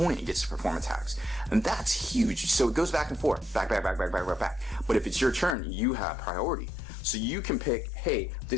gets to perform attacks. And that's huge. So it goes back and forth, back. But if it's your turn, you have priority. So you can pick, hey,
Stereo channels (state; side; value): drops out; right; at 5.6 s